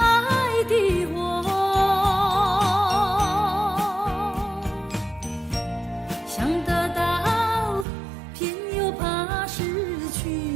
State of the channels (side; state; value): left; drops out; at 7.9 s